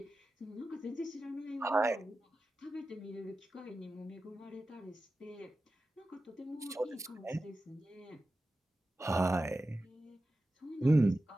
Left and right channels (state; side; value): normal; both; correlation 0.93